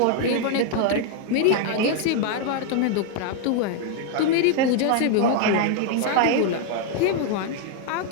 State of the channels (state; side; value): different; both; correlation 0.00